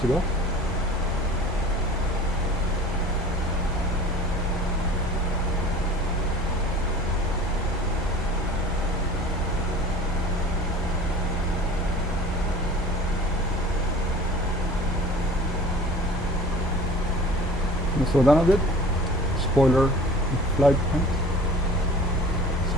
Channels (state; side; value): normal; both; correlation 0.43